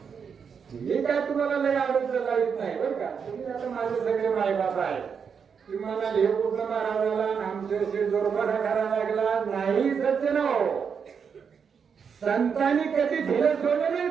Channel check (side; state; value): left; quieter; 6.6 dB